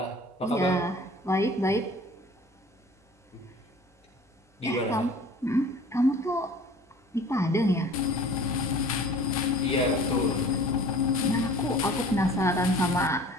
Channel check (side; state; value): both; normal; correlation 0.46